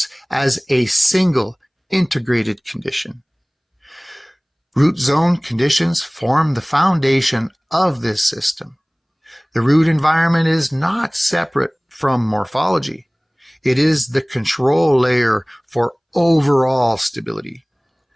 as a single integrated condition. Root zone conditions form the foundation of this system. The root environment is not separate from morphology. It is the control layer for overall stability.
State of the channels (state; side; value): identical; both; correlation 1.00